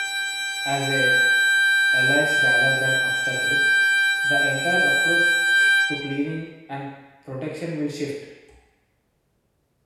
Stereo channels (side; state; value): both; identical; correlation 1.00